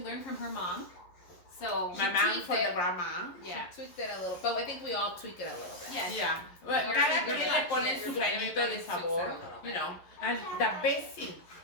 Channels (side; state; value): right; late; 11 ms